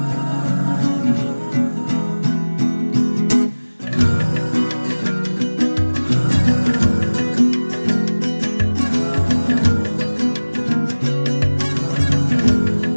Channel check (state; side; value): inverted; both; correlation -1.00